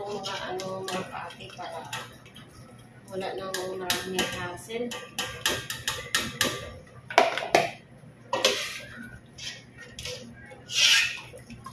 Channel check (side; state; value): both; identical; correlation 1.00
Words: mga kaati para wala nang maraming hassle.